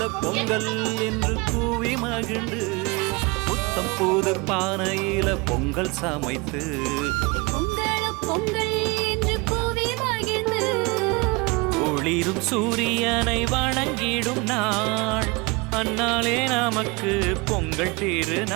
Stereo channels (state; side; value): quieter; left; 26.6 dB